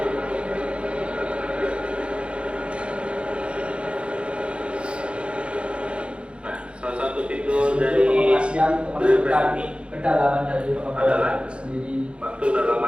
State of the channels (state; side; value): late; left; 0.058 ms